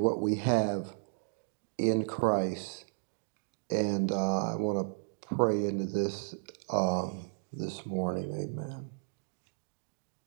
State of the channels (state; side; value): silent; left; digital silence